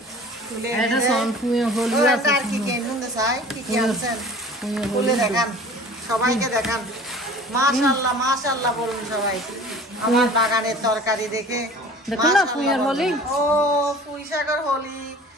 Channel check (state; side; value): normal; both; correlation 0.44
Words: তুলে এটা সম্পূর্ণ হলো আছে আর কি কি নুন চাই কি কি আনছেন তুলে দেখান, সবাইকে দেখান। মাশাআল্লাহ মাশাআল্লাহ বলুন সবাই আমার বাগানের তরকারি দেখে। দেখুন না পুঁইয়ের হলি। ও পুঁই শাকের হলি,